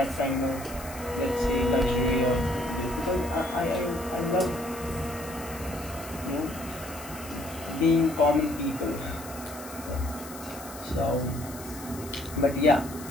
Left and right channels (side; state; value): left; noise; hiss, 15 dB below the sound